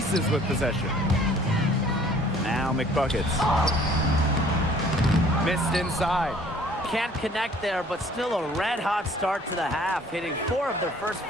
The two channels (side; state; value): both; normal; correlation 0.55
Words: with possession. Now McBuckets. Missed inside. Can't connect there, but still a red-hot start to the half, hitting 4 of their first